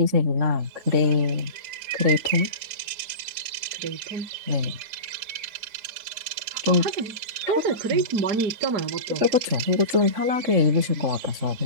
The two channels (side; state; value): left; late; 4.9 ms